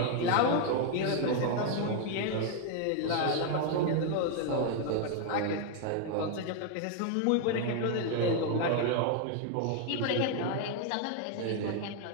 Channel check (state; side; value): different; both; correlation 0.00